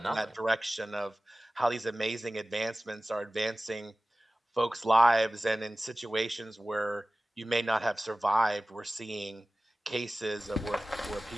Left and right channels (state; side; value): normal; both; correlation 0.97